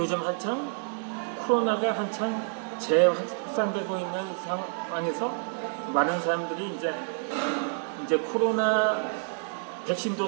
코로나가 한창 재확산되고 있는 상황에서 많은 사람들이 이제 코로나 백신도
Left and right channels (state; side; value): silent; left; 59 dB below the other